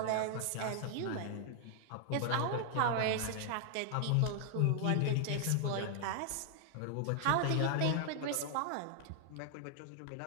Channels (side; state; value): both; different; correlation 0.00